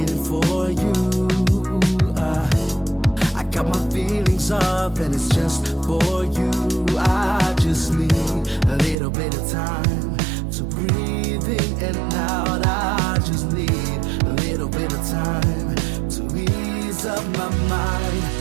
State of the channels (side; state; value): left; drops out; at 9.0 s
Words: for you. I got my feelings up and it's just for you. I just need a little bit of time to breathe in and out. I just need a little bit of time to ease up my mind.